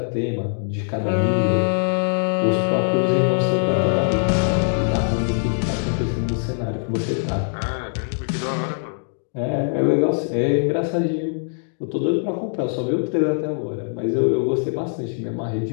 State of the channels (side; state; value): right; silent; digital silence